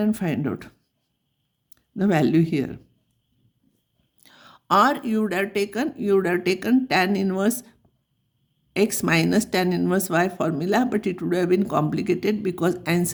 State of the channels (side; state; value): both; identical; correlation 1.00